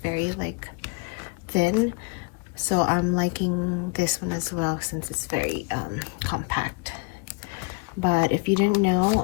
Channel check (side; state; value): right; quieter; 29.3 dB